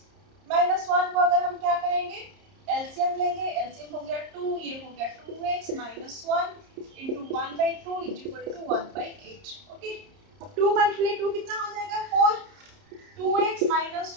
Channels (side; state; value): left; late; 30 ms